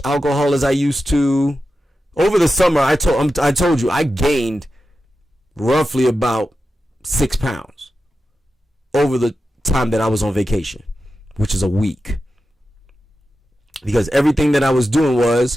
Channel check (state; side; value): normal; both; correlation 0.91